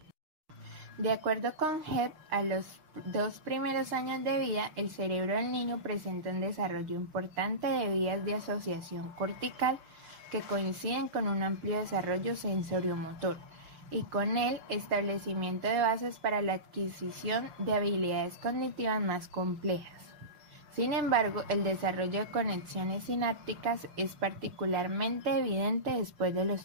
De acuerdo con Hebb, a los 2 primeros años de vida, el cerebro del niño presenta un desarrollo importante de vías de asociación cortical que coinciden con un amplio desarrollo sensoriomotor y con el establecimiento de bases para la adquisición de habilidades cognitivas más complejas. Sin embargo, el desarrollo de conexiones sinápticas es particularmente evidente después de los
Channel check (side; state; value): left; late; 6.2 ms